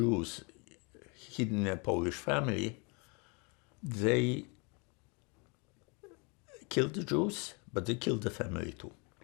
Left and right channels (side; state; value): right; quieter; 32.3 dB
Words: hidden in a Polish family, they killed the Jews, but they killed the family too.